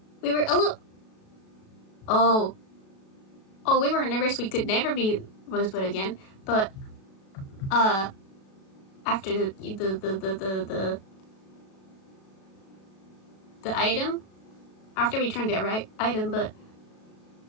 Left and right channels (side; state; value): right; late; 36 ms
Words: we were a little... Oh, we were nervous we could never be Rosebud again, but, after the item, after we turned the right item, but,